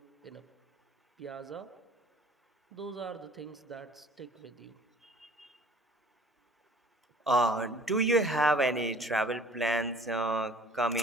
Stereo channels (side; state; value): both; normal; correlation 0.50